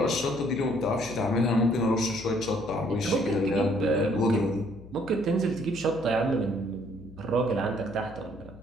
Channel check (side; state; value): left; noise; hum, 18 dB below the sound